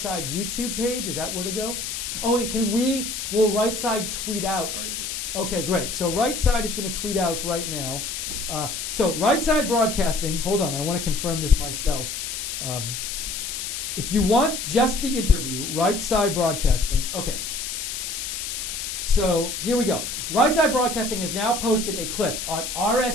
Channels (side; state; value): left; noise; hiss, 5 dB below the sound